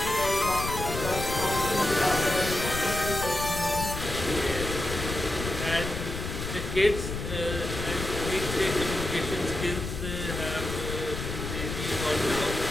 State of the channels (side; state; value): left; noise; rumble, 5 dB below the sound